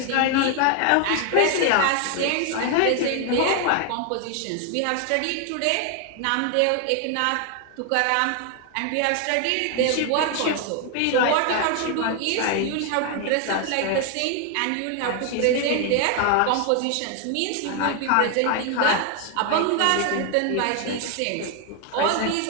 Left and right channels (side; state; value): both; different; correlation 0.00